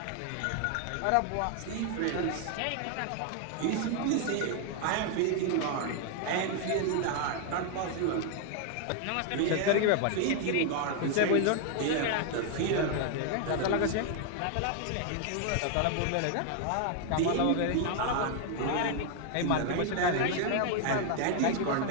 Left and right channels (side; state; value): both; different; correlation 0.00